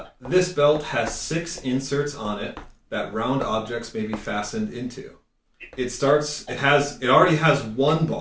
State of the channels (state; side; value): identical; both; correlation 1.00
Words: this belt has 6 inserts on it that round objects may be fastened into. It already has 1